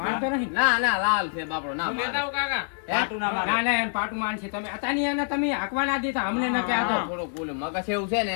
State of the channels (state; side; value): silent; right; digital silence